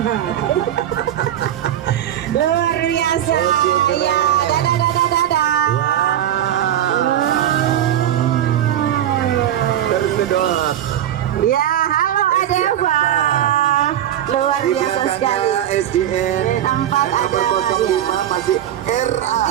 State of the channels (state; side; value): quieter; left; 11.2 dB